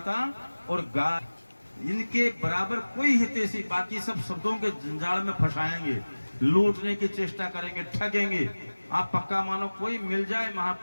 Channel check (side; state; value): both; inverted; correlation -1.00